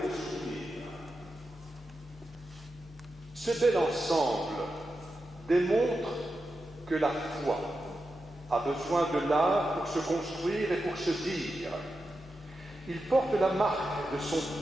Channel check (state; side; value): normal; both; correlation 0.89